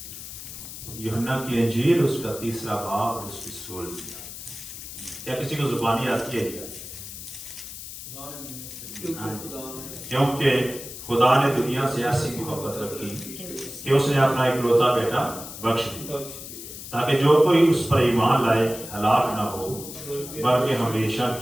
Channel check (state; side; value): noise; left; hiss, 11 dB below the sound